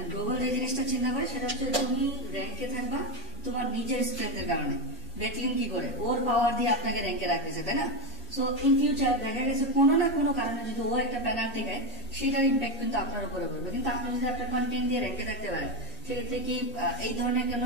গুগল যে জিনিসটা চিন্তা করে সেটা হচ্ছে তুমি র্যাঙ্কে থাকবা তোমার নিজের স্ট্রেংথের কারণে। ব্যাকলিংক কি করে, ওর পাওয়ার দিয়ে আপনাকে র্যাঙ্কে রাখতেছে, তাই না? সো ইন ফিউচার দেখা গেছে কোনো না কোনো কারণে যদি ও একটা পেনাল্টি খায়, সেটার ইম্প্যাক্ট কিন্তু আপনার উপরে পড়বে। কিন্তু আপনি যদি আপনার কন্টেন্ট দিয়ে র্যাঙ্কে থাকতে পারেন, সেক্ষেত্রে কি এই ধরনের কোনো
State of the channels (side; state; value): both; normal; correlation 0.08